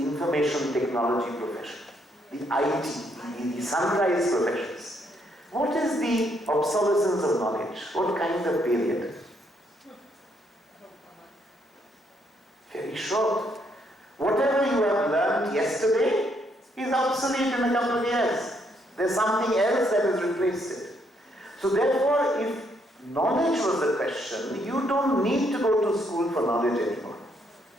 technology profession, the IT, the sunrise professions, what is the obsolescence of knowledge? What kind of period? Very short. Whatever you have learned yesterday is obsolete in a couple of years. There's something else that has replaced it. So therefore, if knowledge was the question, you don't need to go to school for knowledge anymore.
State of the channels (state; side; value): normal; both; correlation 0.72